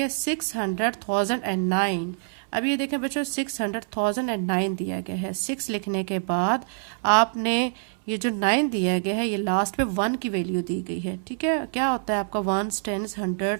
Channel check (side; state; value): left; silent; 61 dB below the other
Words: 600,009। अब ये देखें बच्चों 600,009 दिया गया है। 6 लिखने के बाद आपने ये जो 9 दिया गया है, ये लास्ट पे 1 की वैल्यू दी गई है, ठीक है। क्या होता है आपका 1, 10,